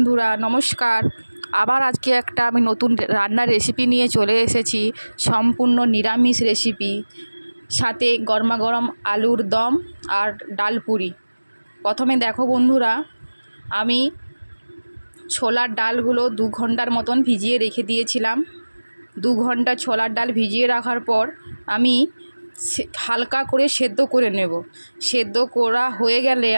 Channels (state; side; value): inverted; both; correlation -1.00